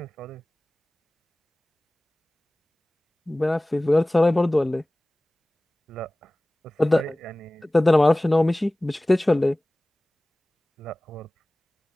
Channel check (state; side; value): normal; both; correlation 0.98